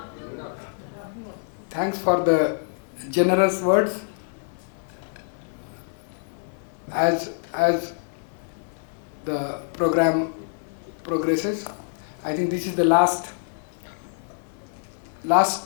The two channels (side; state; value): right; silent; 61 dB below the other